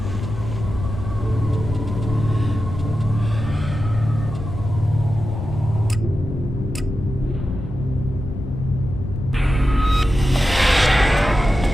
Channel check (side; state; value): left; noise; rumble, 7 dB below the sound